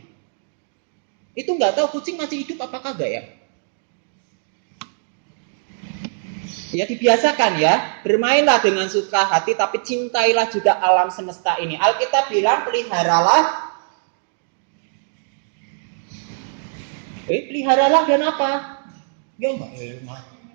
Itu nggak tahu kucing masih hidup apa kagak ya? Ya dibiasakan ya, bermainlah dengan suka hati, tapi cintailah juga alam semesta ini. Alkitab bilang peliharalah. Peliharalah dan apa? Ya enggak.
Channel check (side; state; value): left; silent; digital silence